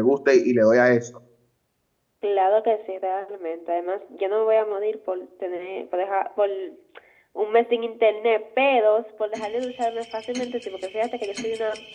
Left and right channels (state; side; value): identical; both; correlation 1.00